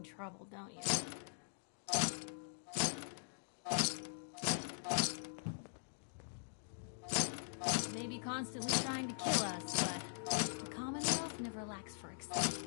trouble, don't you? Maybe constantly trying to kill us, but the Commonwealth never lacks for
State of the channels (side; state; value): right; silent; digital silence